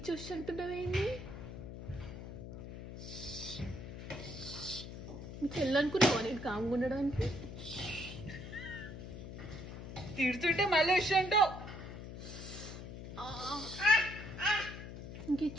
అంటున్నావేంటి? మీ చెల్లనుకున్నావా నేను కామ్గా ఉండడానికి? తిడుతుంటే మళ్ళీ వచ్చంటావు.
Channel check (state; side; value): noise; left; hum, 10 dB below the sound